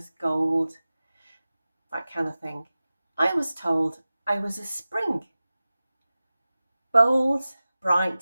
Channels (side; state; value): both; inverted; correlation -0.97